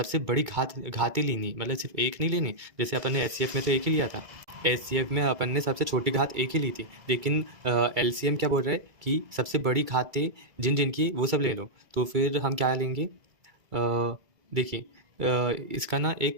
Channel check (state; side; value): late; left; 2.3 ms